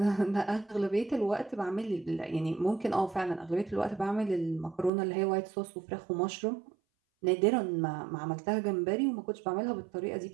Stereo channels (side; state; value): left; drops out; at 4.9 s